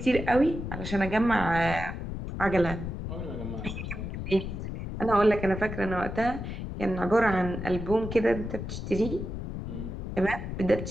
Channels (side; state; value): left; noise; rumble, 6 dB below the sound